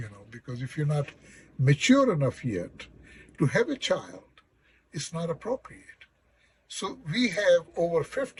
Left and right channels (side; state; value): both; identical; correlation 1.00